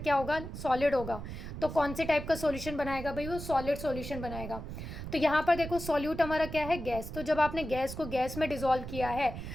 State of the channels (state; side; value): noise; right; rumble, 9 dB below the sound